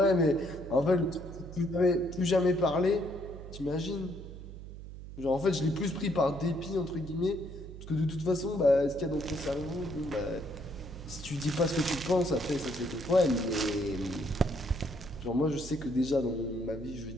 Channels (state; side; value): noise; right; hum, 12 dB below the sound